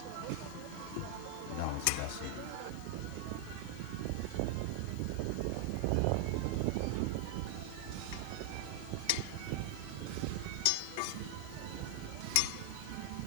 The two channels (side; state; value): both; different; correlation 0.00